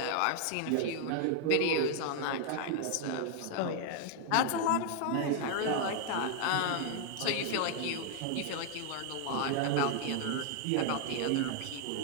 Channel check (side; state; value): both; different; correlation 0.00